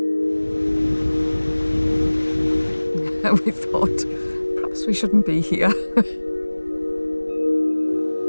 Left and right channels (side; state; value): both; inverted; correlation -1.00